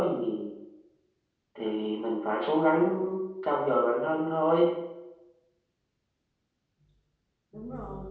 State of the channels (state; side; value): identical; both; correlation 1.00